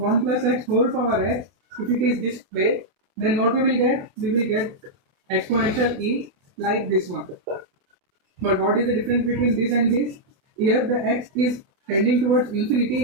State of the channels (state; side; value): late; left; 28 ms